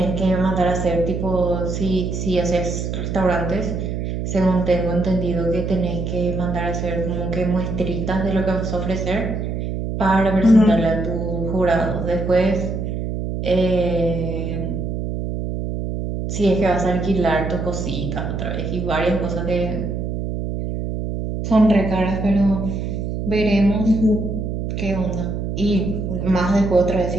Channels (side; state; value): right; noise; hum, 3 dB below the sound